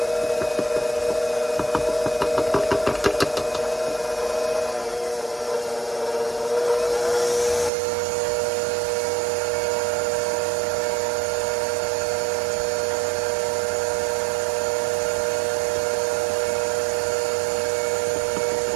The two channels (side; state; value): left; drops out; at 7.7 s